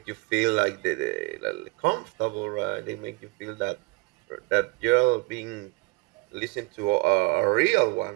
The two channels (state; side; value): quieter; left; 25.2 dB